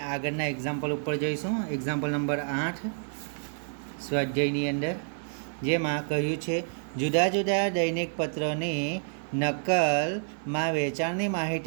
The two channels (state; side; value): silent; left; 56 dB below the other